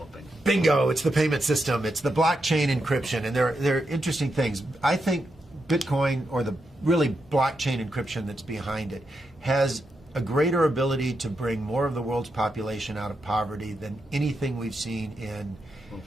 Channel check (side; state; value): both; normal; correlation 0.84